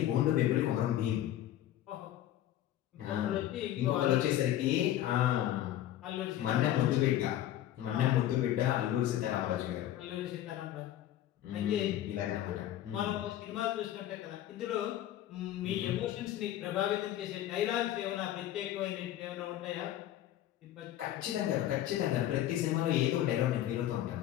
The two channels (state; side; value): quieter; right; 12.6 dB